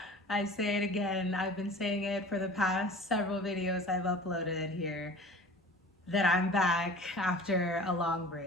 I say it again, I've been saying it for the past several videos I've uploaded here, that I'm back after a long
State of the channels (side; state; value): both; normal; correlation 0.42